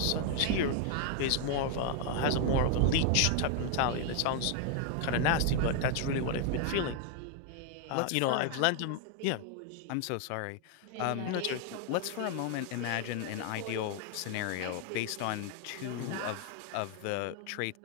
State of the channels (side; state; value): both; different; correlation 0.00